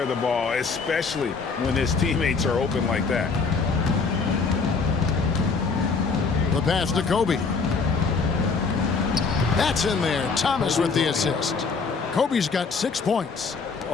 the ball, especially when his teammates are open like that. The pass to Kobe. That's in there. Thomas with the assist. Kobe's got 6 points.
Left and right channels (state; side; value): quieter; right; 4.8 dB